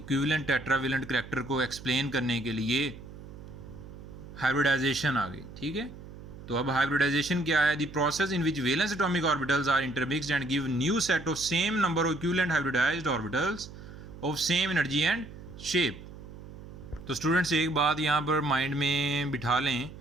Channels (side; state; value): right; noise; hum, 15 dB below the sound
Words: टेट्रावेलेंट करैक्टर को एक्सप्लेन करने के लिए हाइब्रिडाइजेशन आ गई। ठीक है, तो अब हाइब्रिडाइजेशन क्या है? The process in which valence atomic orbitals are intermixed and give new set of same number of equivalent hybridized orbitals of same energy and shape. तो स्टूडेंट्स एक बात यहाँ पर माइंड में बिठा लें